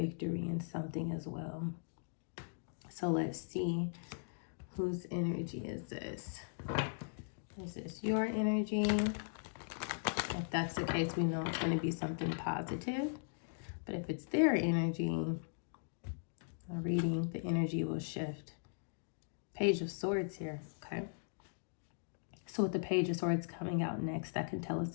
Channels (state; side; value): silent; right; digital silence